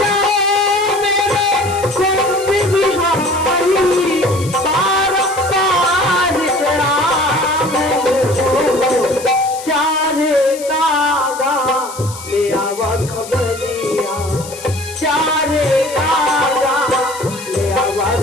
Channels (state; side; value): noise; left; hiss, 14 dB below the sound